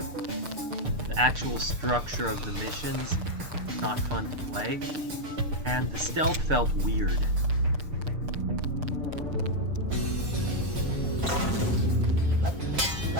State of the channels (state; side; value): late; left; 6.7 ms